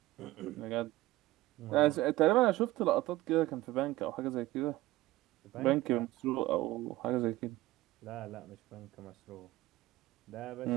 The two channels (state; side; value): quieter; left; 17.1 dB